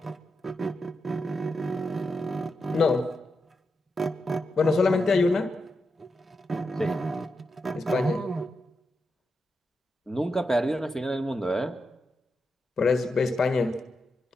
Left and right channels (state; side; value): normal; both; correlation 0.87